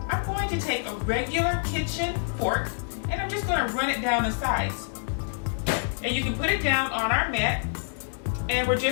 I'm going to take a regular kitchen fork, and I'm just going to run it down the sides. And you can put it down on our mat, and we're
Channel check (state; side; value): silent; right; digital silence